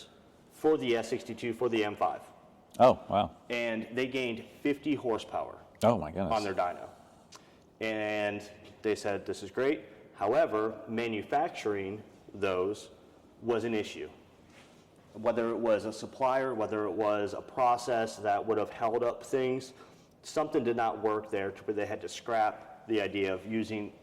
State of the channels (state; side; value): identical; both; correlation 1.00